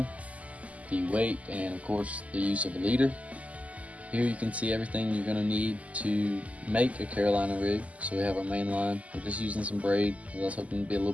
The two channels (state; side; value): late; left; 0.070 ms